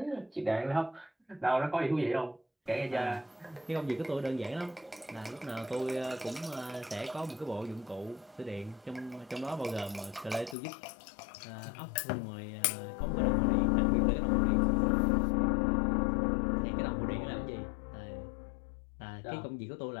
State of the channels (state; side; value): drops out; right; at 10.6 s